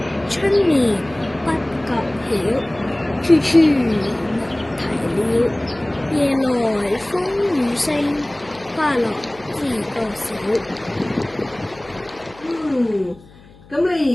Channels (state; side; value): noise; left; hum, 24 dB below the sound